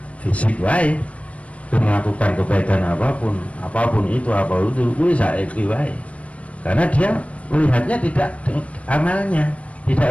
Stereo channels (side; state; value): right; late; 0.064 ms